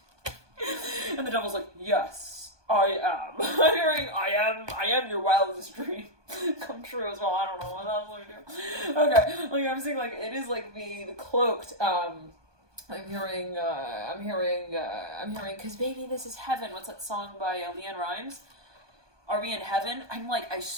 and the devil's like, yes, I am. I'm hearing I am your wildest dream come true as well. I don't know what else I do. Okay, like I'm seeing like it is like the cloaked I'm hearing, cause baby, this is heaven. What's that song by Leanne Rimes? Are we in heaven? I'm like, I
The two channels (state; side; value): late; left; 1.2 ms